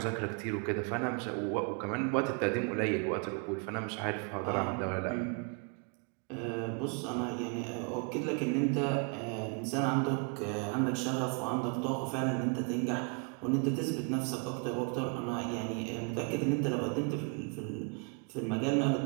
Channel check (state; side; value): quieter; left; 36.3 dB